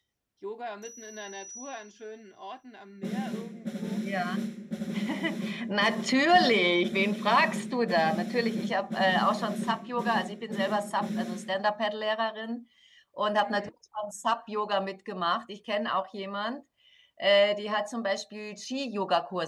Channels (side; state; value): both; identical; correlation 1.00